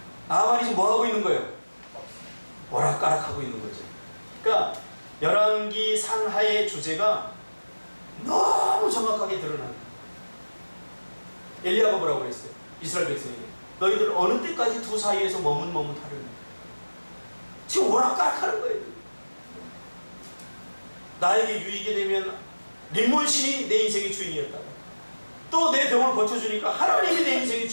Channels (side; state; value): both; inverted; correlation -1.00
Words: 나만이 지금 뭐 하고 있는 거예요? 오락가락하고 있는 거죠. 그러니까 열왕기 상하의 주제가 너무 정확하게 드러나요. 엘리야가 뭐라고 그랬어요? 이스라엘 백성에게 너희들 어느 때까지 두 사이에서 머뭇머뭇하려냐. 지금 오락가락하는 거예요. 나에게 유익이 되면 림몬신이 내 인생의 주인이었다가 또 내 병을 고쳐주니까 하나님이 내 인생의